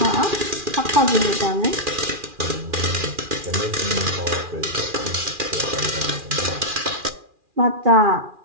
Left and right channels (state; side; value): late; left; 2.4 ms